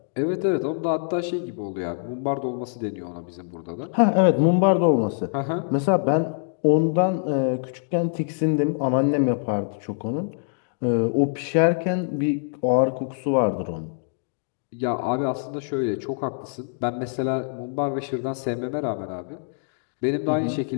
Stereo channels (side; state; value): right; silent; digital silence